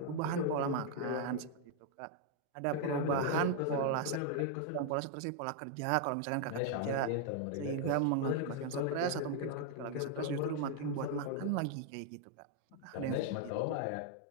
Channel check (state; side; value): different; both; correlation 0.00